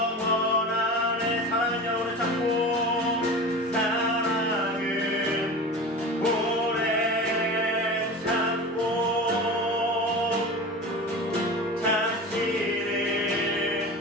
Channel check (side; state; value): both; normal; correlation 0.32